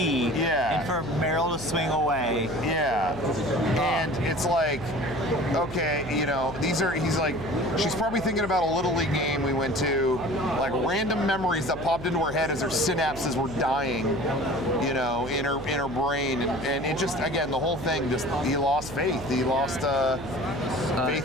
Yeah. And for Meryl to swing away. Yeah. And it's like, okay, he's like, she's probably thinking about a Little League game we went to, like random memories that popped into her head as her synapses were dying, in her brain. And it just, again, the whole thing, he lost faith. He lost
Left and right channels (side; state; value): right; noise; hum, 14 dB below the sound